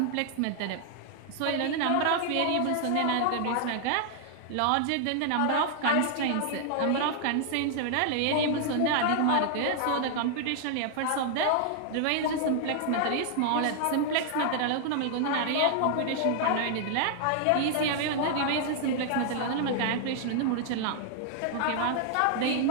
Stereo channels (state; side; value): different; both; correlation -0.01